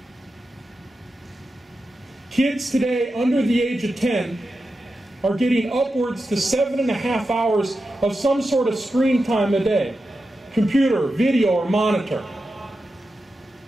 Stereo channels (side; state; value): both; normal; correlation 0.90